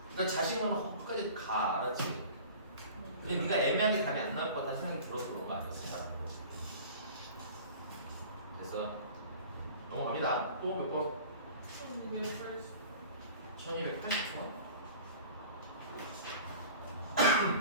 그러니까 자신감은 끝까지 가 알았지? 근데 네가 애매하게 답이 안 나올 것 같다는 생각이 들어서 그런 거 아니었어? 그래서 넘어갑니다. 또 몇 번? 1280. 1280번?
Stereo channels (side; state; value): both; inverted; correlation -0.42